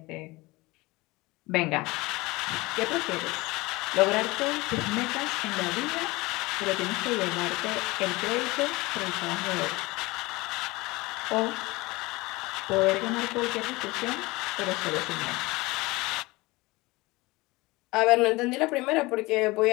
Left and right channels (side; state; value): right; quieter; 22.1 dB